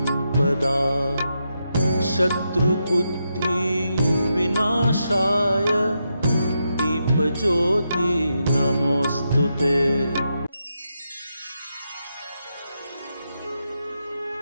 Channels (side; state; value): both; inverted; correlation -0.84